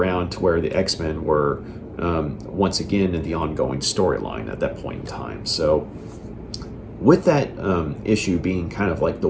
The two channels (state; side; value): identical; both; correlation 1.00